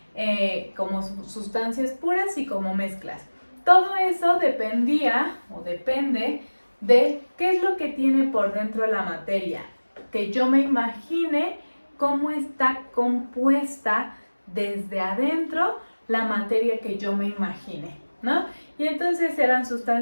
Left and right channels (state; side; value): inverted; both; correlation -1.00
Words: como sustancias puras y como mezclas. Todo eso dependía o depende de qué es lo que tiene por dentro la materia, que yo me imagine cómo está compuesta desde adentro la materia que yo me imagine, ¿no? Y entonces eran